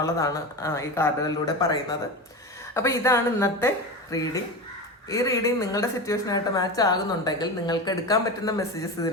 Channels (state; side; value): normal; both; correlation 0.24